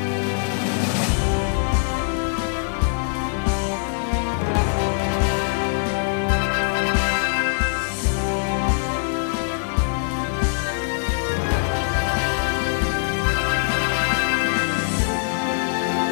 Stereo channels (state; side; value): silent; right; digital silence